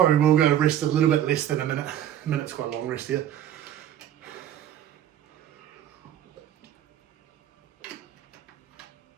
will go rest a little bit less than a minute. A minute's quite a long rest here.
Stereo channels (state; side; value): quieter; left; 11.0 dB